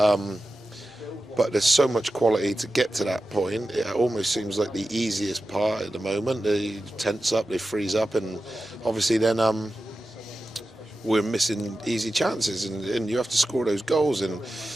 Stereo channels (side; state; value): both; normal; correlation 0.93